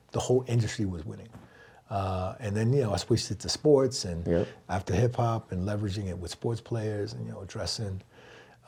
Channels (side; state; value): both; identical; correlation 1.00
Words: the whole industry was winning. And then, I switched it to sports and after hip hop and leveraging it with sports players and, addressing